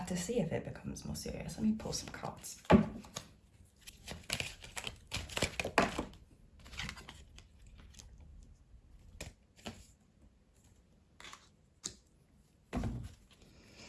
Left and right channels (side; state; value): both; identical; correlation 1.00